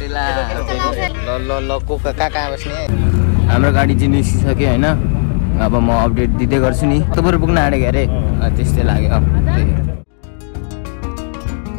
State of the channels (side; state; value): right; silent; digital silence